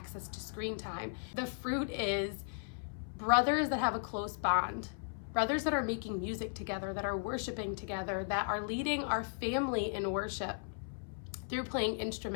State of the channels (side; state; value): right; silent; 54 dB below the other